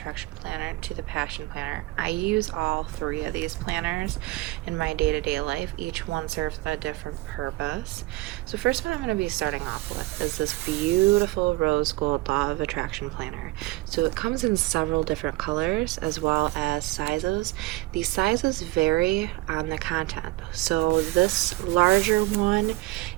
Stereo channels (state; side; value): quieter; left; 19.9 dB